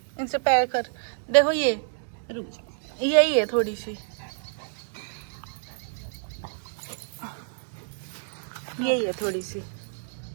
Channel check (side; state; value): left; silent; digital silence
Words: इनसे पैर कर, देखो ये रुक जा। यही है थोड़ी सी, यही है थोड़ी सी।